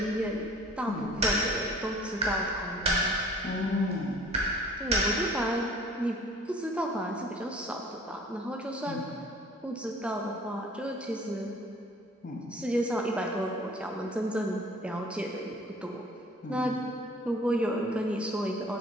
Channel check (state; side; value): normal; both; correlation 0.50